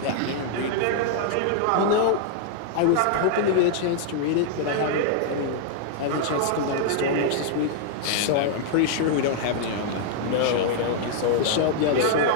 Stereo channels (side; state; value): both; different; correlation -0.01